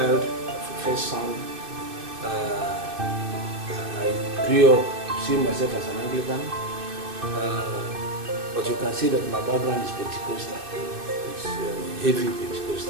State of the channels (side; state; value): left; late; 2.6 ms